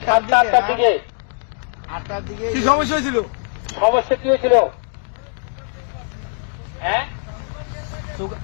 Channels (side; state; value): right; silent; 65 dB below the other